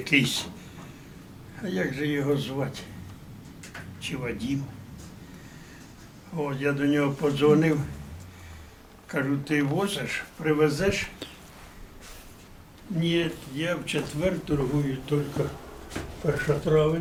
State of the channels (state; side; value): identical; both; correlation 1.00